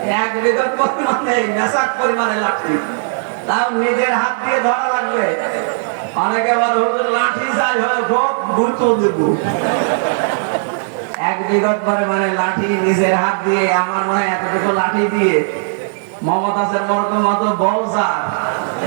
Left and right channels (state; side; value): silent; left; 68 dB below the other